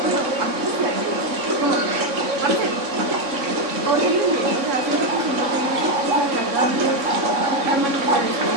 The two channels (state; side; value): late; left; 3.6 ms